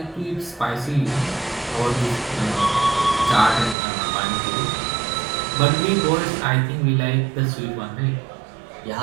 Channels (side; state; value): left; drops out; at 3.8 s